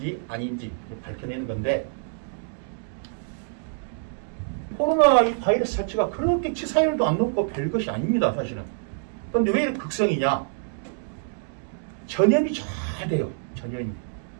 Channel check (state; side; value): silent; left; digital silence